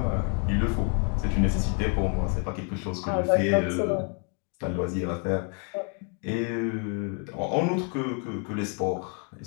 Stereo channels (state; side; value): quieter; right; 37.1 dB